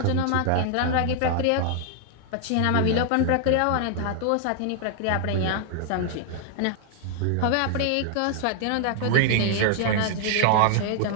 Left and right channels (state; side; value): different; both; correlation 0.00